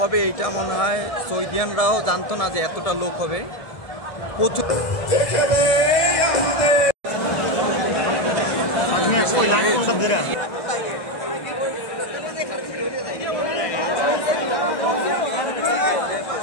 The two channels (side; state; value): right; late; 2.0 ms